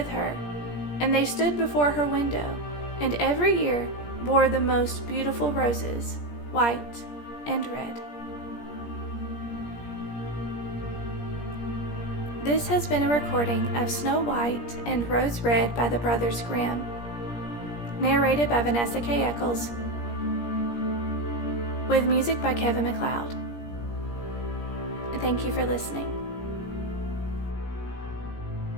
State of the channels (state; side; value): late; right; 17 ms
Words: her, and they stood before her window, and every year bore the most beautiful roses, white and red. This has been a recording of Snow White and Rose Red by the Brothers Grimm, narrated by Vanessa K. Eccles, with music by Kevin MacLeod. Thank you for listening.